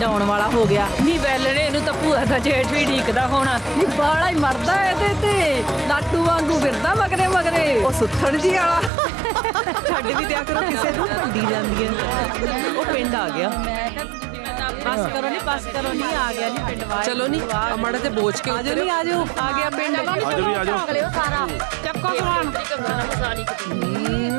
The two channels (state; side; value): drops out; left; at 8.9 s